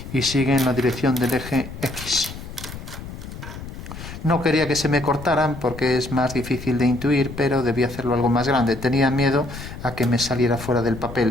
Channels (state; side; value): noise; left; rumble, 12 dB below the sound